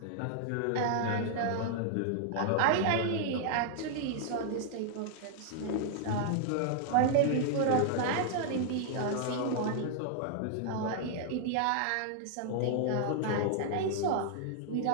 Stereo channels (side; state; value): both; different; correlation 0.00